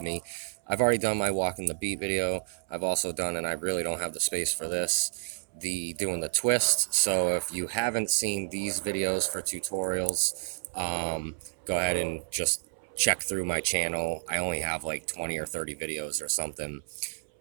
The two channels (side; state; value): left; silent; 58 dB below the other